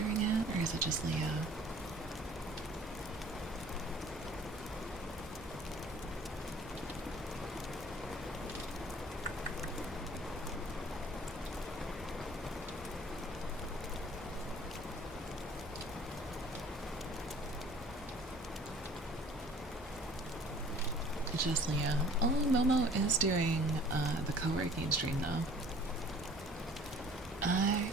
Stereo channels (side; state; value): both; normal; correlation 0.51